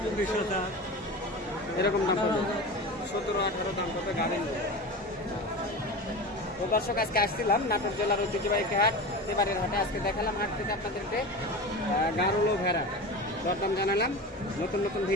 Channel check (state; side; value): normal; both; correlation 0.29